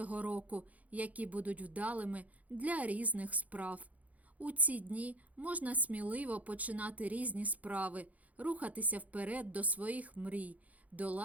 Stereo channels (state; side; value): late; left; 0.073 ms